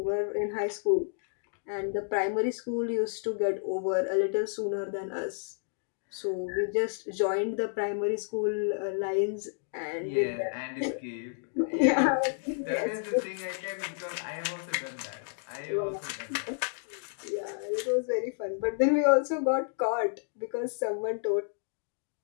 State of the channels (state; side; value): silent; right; digital silence